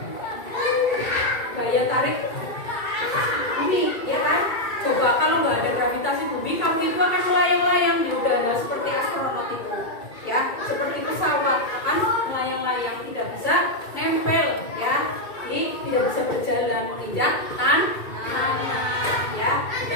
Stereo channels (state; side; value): late; right; 2.3 ms